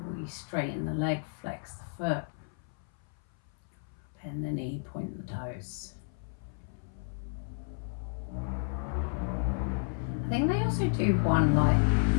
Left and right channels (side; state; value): right; silent; 56 dB below the other